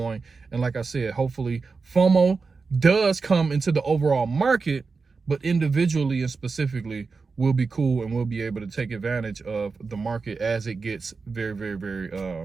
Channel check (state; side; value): quieter; left; 4.5 dB